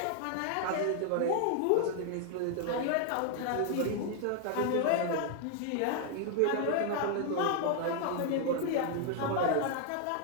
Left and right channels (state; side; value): different; both; correlation 0.00